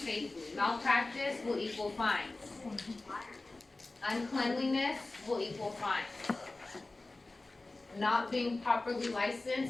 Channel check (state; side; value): quieter; right; 3.1 dB